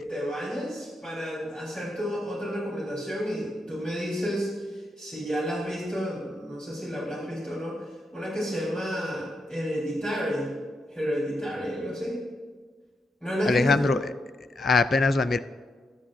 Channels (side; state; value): both; normal; correlation 0.83